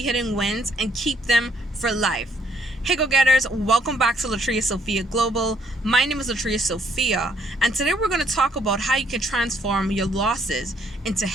wins and keep them for life. Hey go-getters, welcome back to Latria Sophia Global. My name is Latria Sophia, and today we're going to talk about how you can transform your losses into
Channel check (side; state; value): both; normal; correlation 0.67